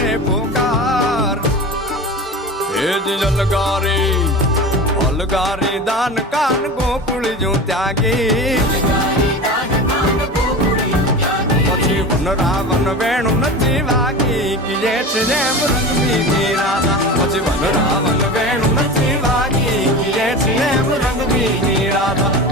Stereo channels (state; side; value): normal; both; correlation 0.30